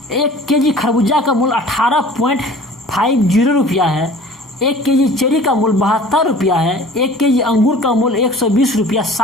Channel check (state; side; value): normal; both; correlation 0.46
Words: 1 केजी खरबूजा का मूल 18.50 रुपया है। 1 केजी चेरी का मूल 72 रुपया है। 1 केजी अंगूर का मूल 120 रुपया